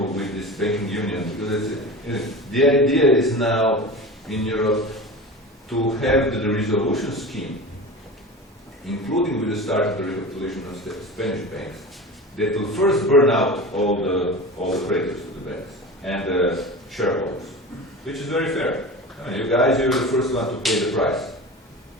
this banking union, because the idea is now in Europe to have the resolution scheme, including with the start of the recapitalization of Spanish banks, that will first burn out all the creditors of the banks and the shareholders, which is very fair. I mean, you guys, you're the first one to pay the price.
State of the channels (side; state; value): both; normal; correlation 0.32